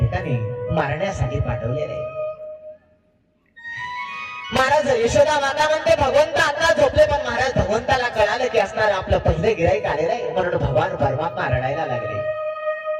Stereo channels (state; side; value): identical; both; correlation 1.00